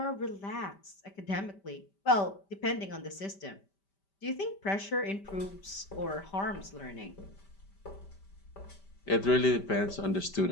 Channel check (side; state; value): right; late; 5.1 ms